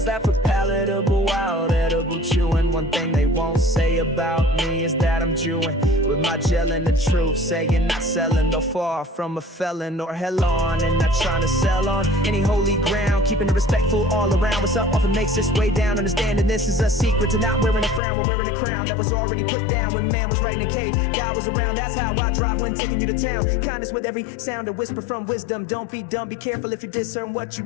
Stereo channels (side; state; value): right; drops out; at 18.0 s